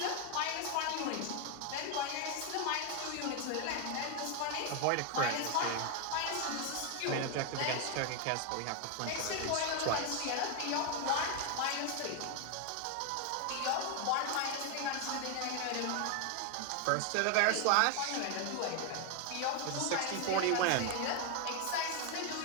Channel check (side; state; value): both; different; correlation 0.01